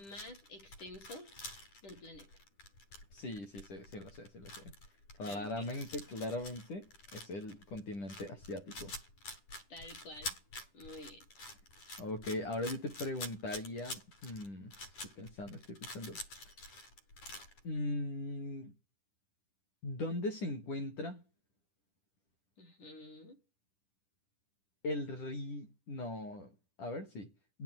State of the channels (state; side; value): late; right; 10 ms